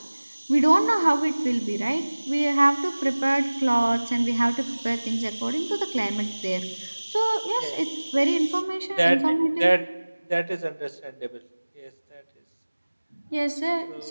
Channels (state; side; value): inverted; both; correlation -1.00